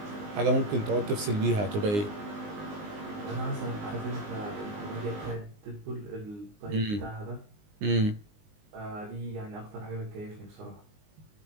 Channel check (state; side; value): late; left; 19 ms